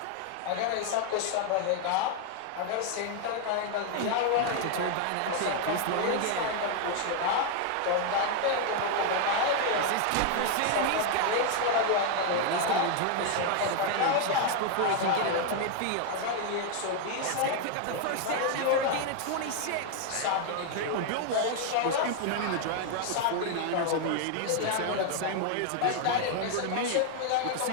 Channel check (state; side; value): different; both; correlation 0.00